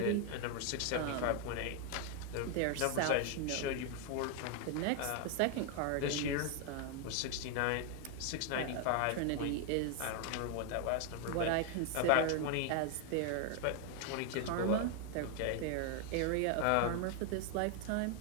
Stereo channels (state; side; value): different; both; correlation 0.00